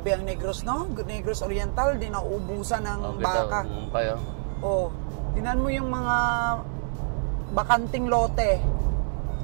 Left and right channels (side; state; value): left; silent; digital silence